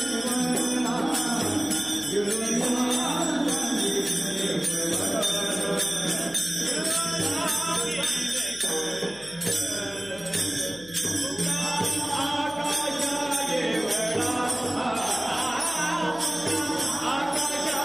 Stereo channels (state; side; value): noise; left; hum, 21 dB below the sound